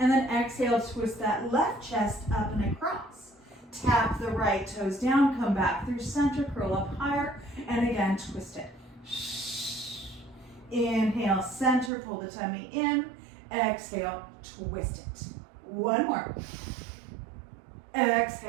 then exhale, twist that left chest up and across. Tap the right toes down, come back through center, curl up higher, and again, twist it. Inhale, center, pull the tummy in. Exhale, twist it. 1 more.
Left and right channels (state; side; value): drops out; left; at 11.9 s